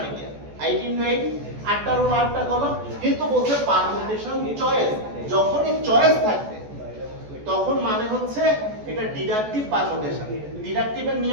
কি 8 × 8 8টা রো 8টা কলাম। কিন্তু বলছে পারমুটেশন চয়েস, যখনই চয়েস থাকবে তখন মানে হচ্ছে এটা ডিডাকটিভ পারমুটেশন। ডিডাকটিভের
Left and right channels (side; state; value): left; late; 14 ms